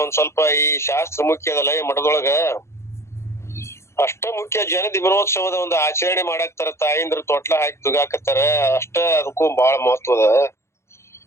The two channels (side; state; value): right; late; 0.13 ms